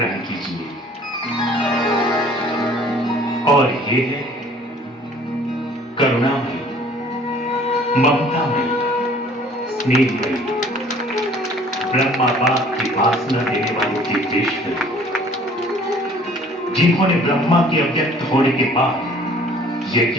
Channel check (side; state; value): both; normal; correlation 0.53